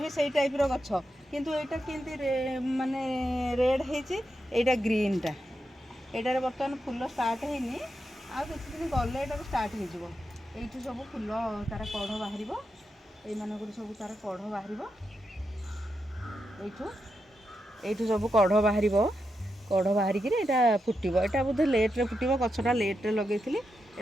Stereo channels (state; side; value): normal; both; correlation 0.86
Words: भी सही टाइप गछ किंतु एटा केमती माने रेड है ग्रीनटा। एटार बर्तमान फूल स्टार्ट हैनी आ किसी दिन गले ये स्टार्ट हो सब फूल तार कढ़ बाहर ये सब तार कढ़ बाहर यू सब कढ़ बाहर कढ़ बाहरिकी यहाँ फुटब। यहाँ बोधे लेट्रे फुटब गछटा लेट्रे लगे